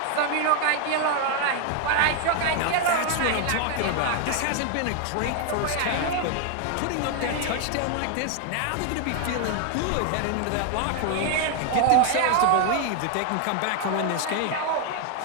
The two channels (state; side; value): different; both; correlation 0.00